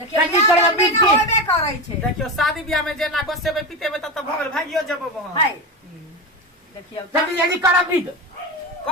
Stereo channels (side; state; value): both; normal; correlation 0.19